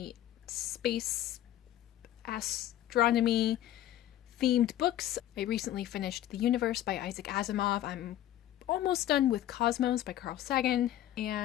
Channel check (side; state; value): right; quieter; 12.8 dB